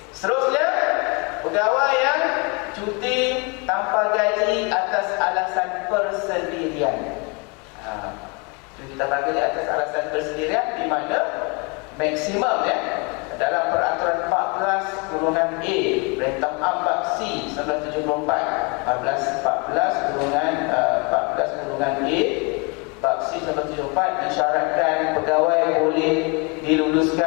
Seterusnya, pegawai yang cuti tanpa gaji atas alasan persendirian. Cuti tanpa gaji atas alasan persendirian di mana maksimum ya dalam peraturan 14/A Perintah Ambak C 1974 14/A Bab C 1974 disyaratkan pegawai boleh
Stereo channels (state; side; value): quieter; right; 31.3 dB